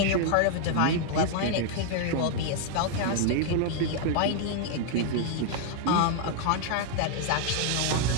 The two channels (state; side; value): different; both; correlation 0.00